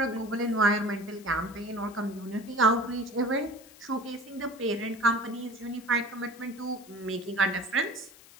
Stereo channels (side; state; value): left; noise; hiss, 22 dB below the sound